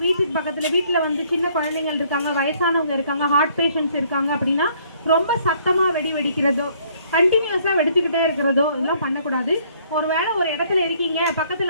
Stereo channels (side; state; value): both; inverted; correlation -0.63